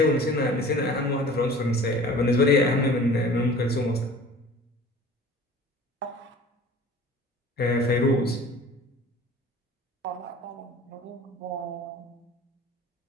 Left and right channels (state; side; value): normal; both; correlation 0.44